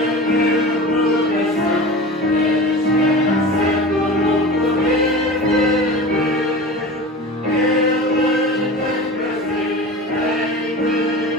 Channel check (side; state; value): both; normal; correlation 0.34